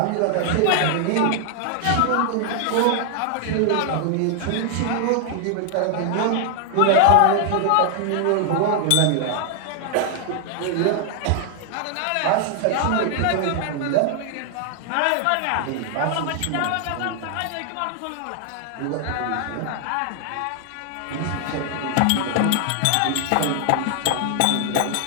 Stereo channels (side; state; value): both; different; correlation 0.00